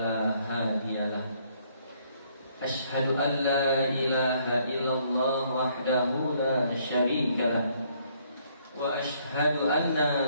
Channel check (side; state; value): both; inverted; correlation -0.67